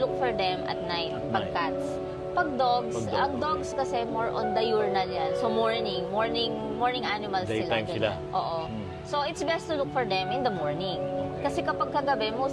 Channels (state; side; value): identical; both; correlation 1.00